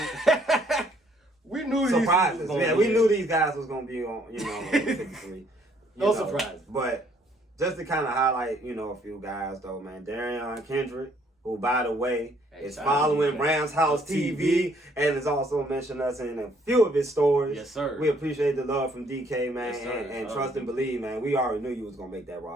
we knew surprises. We knew these guys was gonna be on, on 53. No surprise. But just to kind of highlight, a few guys though, man. Darian Kendrick, who by the way is following Ramshousetv and has also mentioned us in a few of his stories. Yes, sir. We appreciate the love from DK, man, yes, sir. and trust and believe, man. We already knew you was gonna make that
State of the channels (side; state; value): both; normal; correlation 0.65